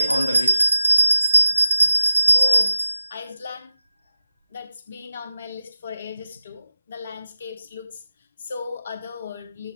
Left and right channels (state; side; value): inverted; both; correlation -0.97